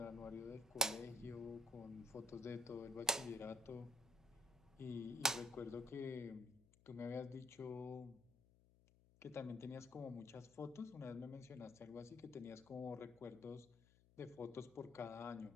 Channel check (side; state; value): left; noise; hum, 26 dB below the sound